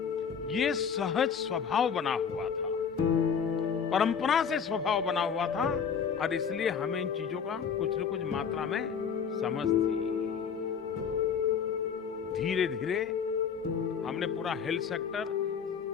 ये सहज स्वभाव बना हुआ था, परंपरा से स्वभाव बना हुआ था, और इसलिए हमें इन चीजों का कुछ न कुछ मात्रा में समझ थी। धीरे धीरे हमने पूरा हेल्थ सेक्टर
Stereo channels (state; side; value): quieter; right; 6.9 dB